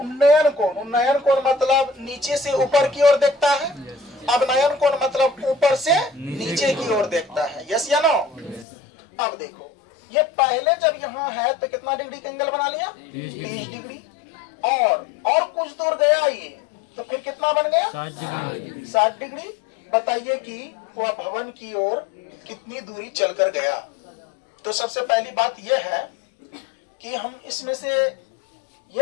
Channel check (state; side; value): drops out; right; at 8.7 s